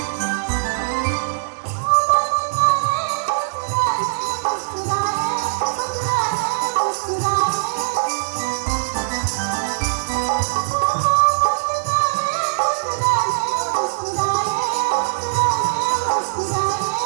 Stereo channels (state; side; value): silent; left; digital silence